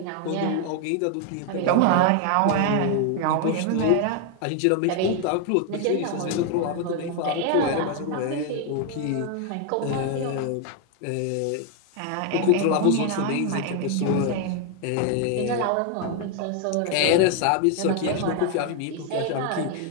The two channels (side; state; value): both; different; correlation 0.01